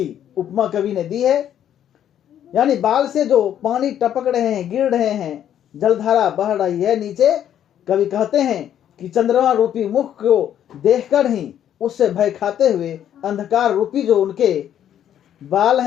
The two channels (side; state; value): right; quieter; 10.3 dB